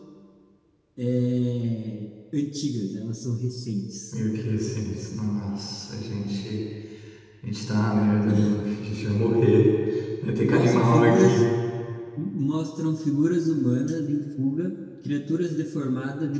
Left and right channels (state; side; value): identical; both; correlation 1.00